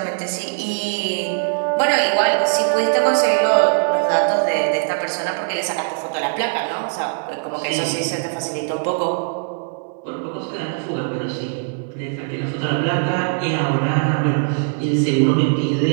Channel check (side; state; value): left; silent; 65 dB below the other